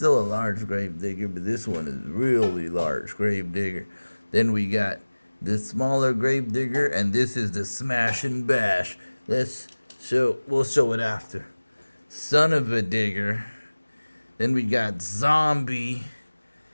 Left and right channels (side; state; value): both; inverted; correlation -1.00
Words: a large Grave Digger, but this one is really large Grave Digger. Then we got the smaller Grave Digger, and this is the Smash and Bash. We'll show it after. Son of a Digger. Then we got Zombie